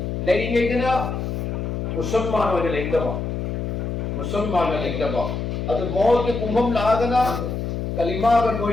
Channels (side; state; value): left; noise; hum, 3 dB below the sound